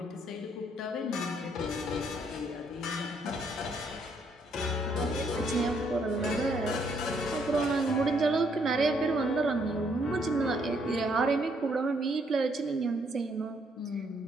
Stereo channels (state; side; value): normal; both; correlation 0.70